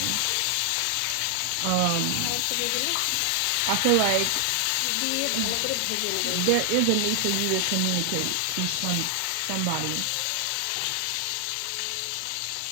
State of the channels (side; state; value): both; different; correlation 0.00